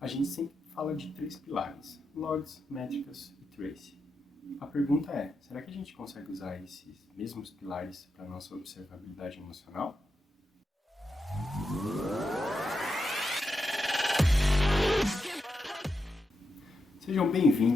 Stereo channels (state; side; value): normal; both; correlation 0.86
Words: gente sempre fala de três pilares: logs, métricas e trace. A pergunta é, será que a gente consegue usar esses mesmos pilares para a nossa observabilidade emocional? Sejam